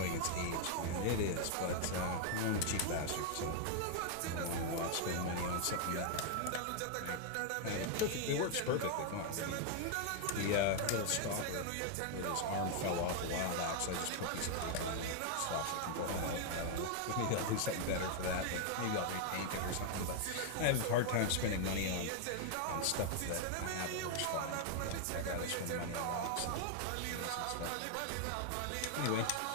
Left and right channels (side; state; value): both; different; correlation 0.00